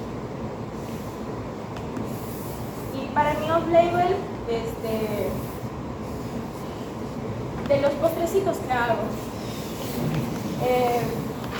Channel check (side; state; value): both; identical; correlation 1.00